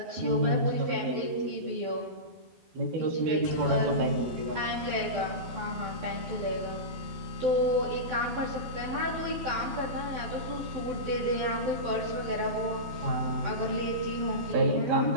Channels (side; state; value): left; late; 12 ms